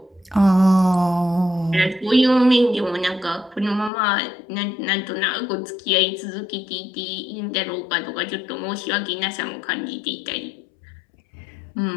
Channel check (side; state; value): right; drops out; at 3.9 s